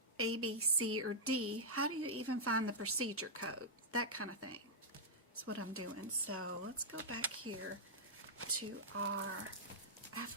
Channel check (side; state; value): both; normal; correlation -0.08